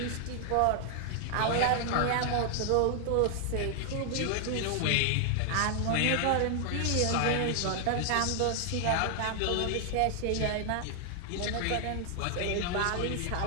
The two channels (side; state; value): both; different; correlation 0.00